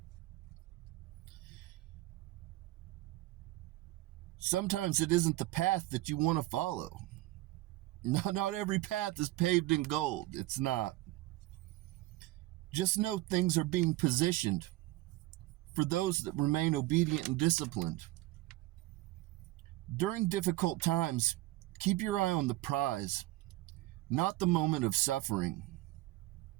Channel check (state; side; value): quieter; left; 18.0 dB